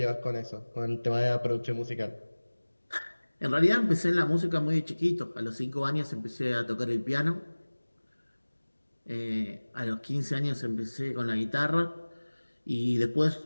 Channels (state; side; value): inverted; both; correlation -1.00